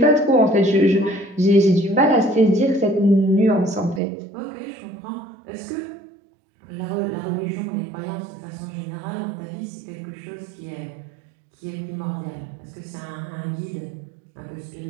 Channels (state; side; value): drops out; left; at 4.0 s